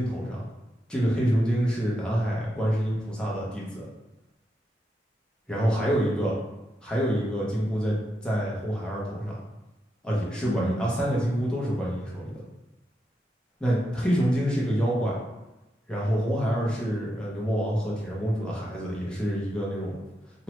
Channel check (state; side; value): normal; both; correlation 0.84